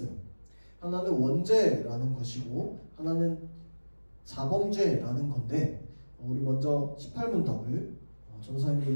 하나는 원죄라는 것이고 하나는 자범죄라는 건데 우리 먼저 18문답을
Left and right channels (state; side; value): inverted; both; correlation -1.00